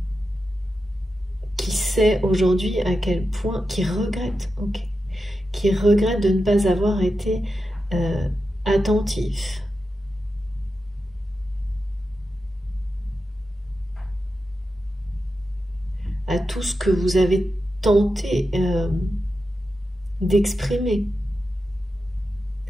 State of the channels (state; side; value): normal; both; correlation 0.90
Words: qui sait aujourd'hui à quel point, qui regrette de ne pas avoir été attentif. À tout ce que vous avez tenté d'exprimer,